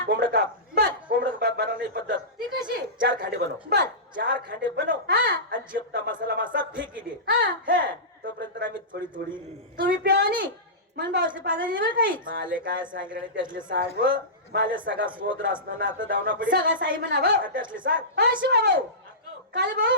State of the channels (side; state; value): both; normal; correlation -0.19